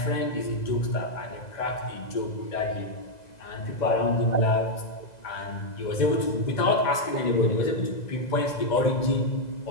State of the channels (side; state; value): right; late; 2.0 ms